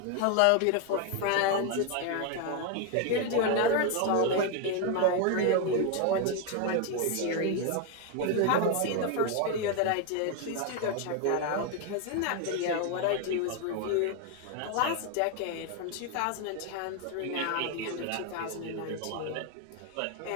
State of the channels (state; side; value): different; both; correlation 0.01